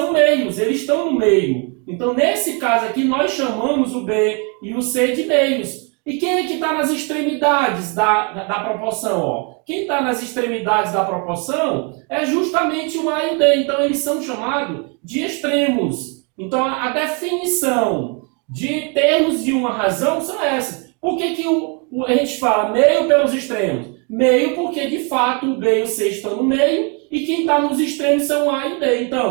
meios, eles estão no meio. Então, nesse caso aqui, nós chamamos o B e o C de meios. E quem é que está nas extremidades da proporção? Ó? Quem está nas extremidades da proporção é justamente o A e o D. Então, eles são chamados de extremos. Então, a definição de termos de uma razão são essas. Por que a gente fala meio pelos extremos? Meio porque, de fato, o B e o C estão no meio e quem está nos extremos são o A e o D.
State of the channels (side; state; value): left; quieter; 35.0 dB